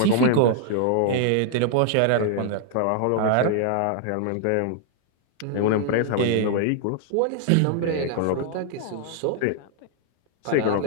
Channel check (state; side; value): different; both; correlation -0.01